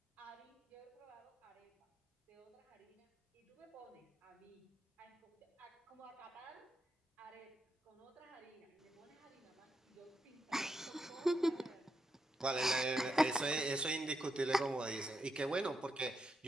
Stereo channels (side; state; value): both; normal; correlation 0.83